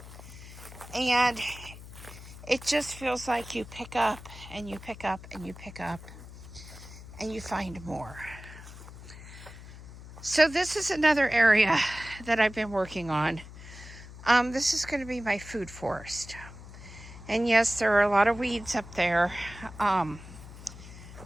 And it just feels like you pick up and you pick up and you pick up and you find more. So this is another area that I've been working on. This is going to be my food forest. And yes, there are a lot of weeds up there.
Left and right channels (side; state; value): left; noise; hum, 15 dB below the sound